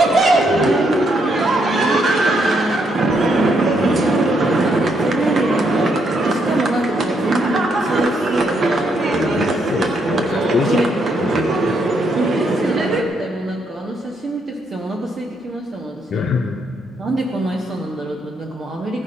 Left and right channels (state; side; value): normal; both; correlation 0.76